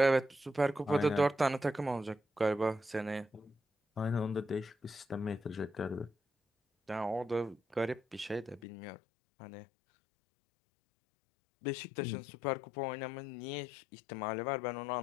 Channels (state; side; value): drops out; right; at 8.6 s